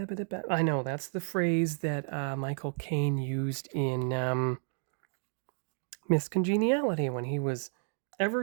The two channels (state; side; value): silent; left; 57 dB below the other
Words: know, that's the phrase that Michael Caine used in Miss Congeniality when he was